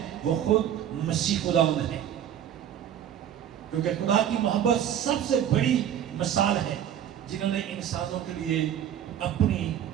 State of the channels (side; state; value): left; quieter; 10.1 dB